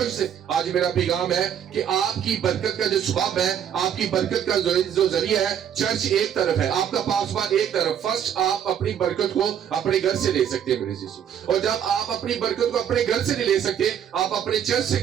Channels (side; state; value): left; quieter; 9.0 dB